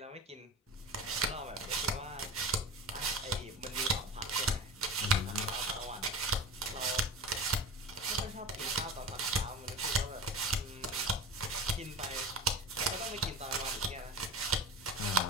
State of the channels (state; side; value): normal; both; correlation 0.31